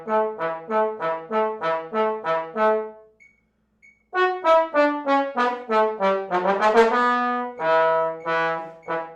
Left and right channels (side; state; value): both; identical; correlation 1.00